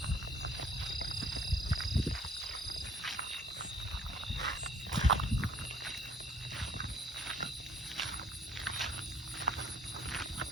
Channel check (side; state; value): both; normal; correlation 0.58